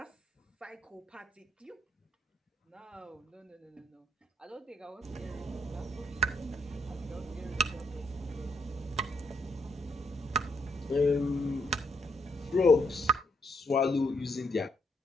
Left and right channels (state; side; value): normal; both; correlation 0.74